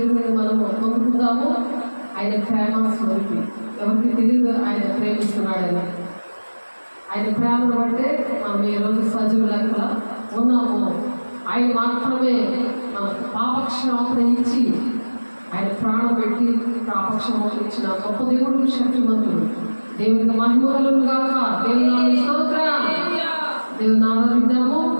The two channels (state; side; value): inverted; both; correlation -1.00